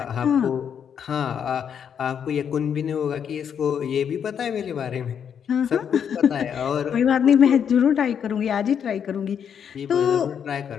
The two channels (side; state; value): right; quieter; 8.0 dB